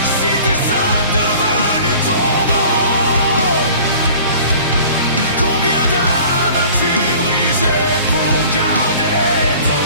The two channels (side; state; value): both; inverted; correlation -0.46